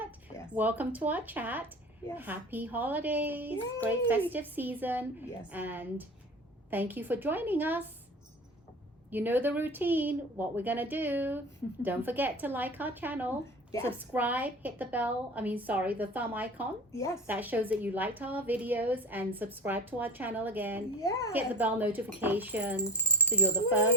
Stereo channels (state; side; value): normal; both; correlation 0.35